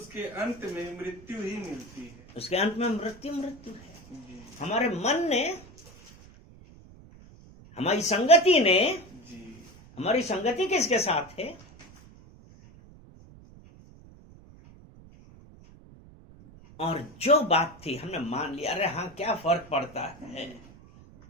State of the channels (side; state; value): right; noise; rumble, 22 dB below the sound